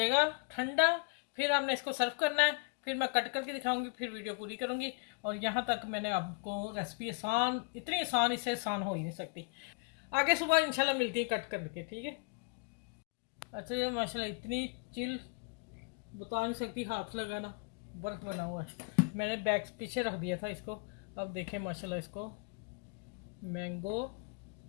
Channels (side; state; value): right; quieter; 31.9 dB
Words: ठंडा, फिर हमने इसको सर्व करना है। फिर मैं कट करके दिखाऊंगी, फिर वीडियो पूरी करूँगी। और यहाँ तक मैंने आपको रेसिपी आसान, इतनी आसान, इससे आसान हो ही नहीं सकती। आगे सुबह इंशाल्लाह मिलती है कट करके, ठीक है। अच्छा ये माशाल्लाह इतनी चिल बता नहीं सकती, हाथ लगाना बर्फ़ बना हुआ है। मैंने बैग पीछे रख दिया था इसको। अब देखें माशाल्लाह इसको मैंगो